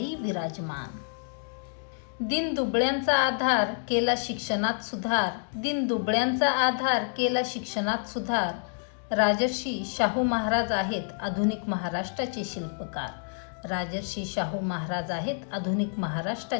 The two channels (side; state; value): right; silent; digital silence